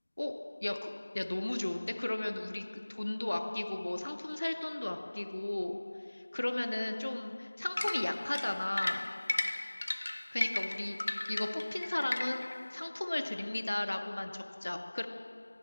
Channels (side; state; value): both; inverted; correlation -1.00